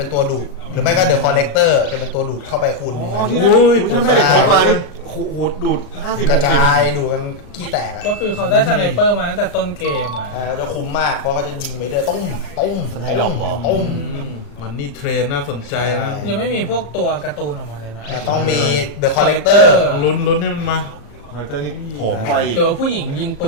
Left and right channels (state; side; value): late; right; 36 ms